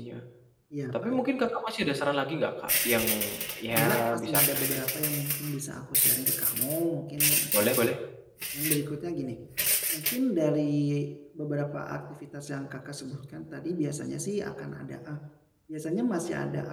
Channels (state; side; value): identical; both; correlation 1.00